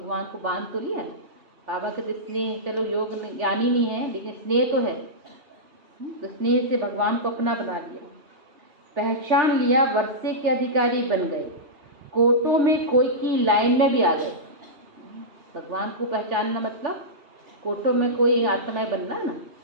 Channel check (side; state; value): left; late; 3.4 ms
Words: को बांध तो लिया ना। बाबा कहते स्नेह, चलो योग ज्ञानी नहीं है लेकिन स्नेह तो है, तो स्नेह से भगवान को अपना बना लिया। पहचान लिया, वर्षे के अधिकारी बन गए, कोटों में कोई की लाइन में भी आ गए। भगवान को पहचानना मतलब कोटों में कोई आत्माएं बनना ना।